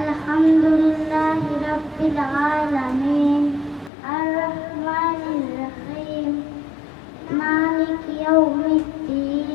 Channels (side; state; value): right; drops out; at 3.9 s